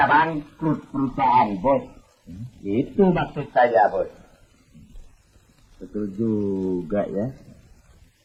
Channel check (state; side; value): identical; both; correlation 1.00